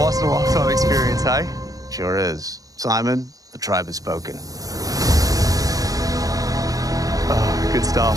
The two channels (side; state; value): left; late; 0.17 ms